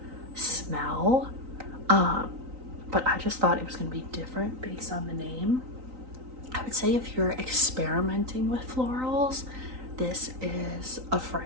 smell. But I just thought it was going to be different based on the name. I would say if you're experimenting with florals, this is a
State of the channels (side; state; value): left; late; 3.9 ms